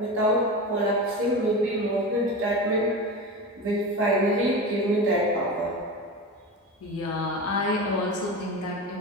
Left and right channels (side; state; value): both; normal; correlation 0.26